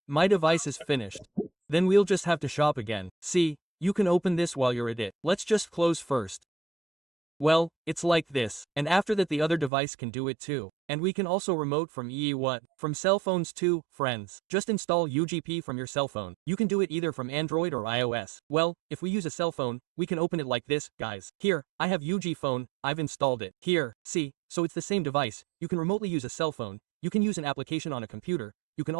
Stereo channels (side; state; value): left; drops out; at 9.7 s